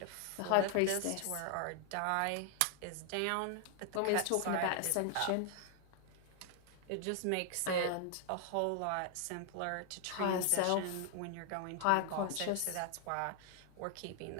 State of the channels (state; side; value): different; both; correlation 0.00